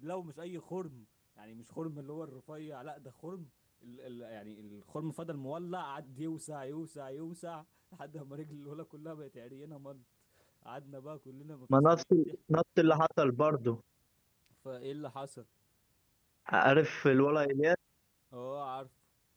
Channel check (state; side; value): identical; both; correlation 1.00